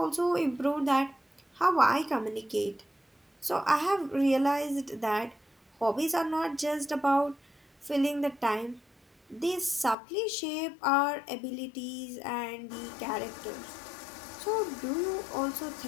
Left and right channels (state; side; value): drops out; right; at 10.0 s